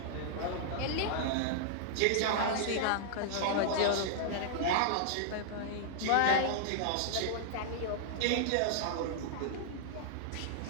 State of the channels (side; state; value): both; different; correlation -0.01